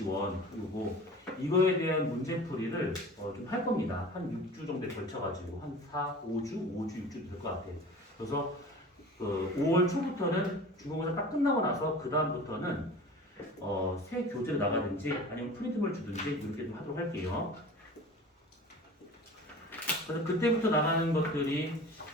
요거 이거에 대한 문제풀이를 좀 할 겁니다. 한 6주 정도에 걸쳐가지고 한 4, 5주, 6주 될 것 같아요. 그래서 그 5월 초부터는 중간고사 딱 끝나고 나서 그 다음부터는 새 교재를 나가든지 아니면 프린트물 주든지 이렇게 좀 하도록 할게요. 그래서 그때부터 나가는 것들이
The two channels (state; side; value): normal; both; correlation 0.39